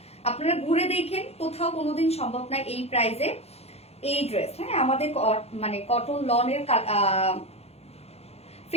আপনারা ঘুরে দেখেন, কোথাও কোনোদিন সম্ভব না এই প্রাইসে এই ড্রেস। হ্যাঁ, আমাদের মানে কটন লনের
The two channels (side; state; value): right; late; 0.30 ms